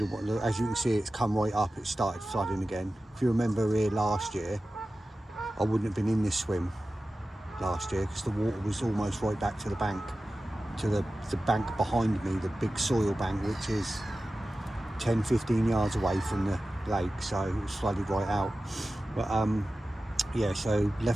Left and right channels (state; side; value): normal; both; correlation 0.95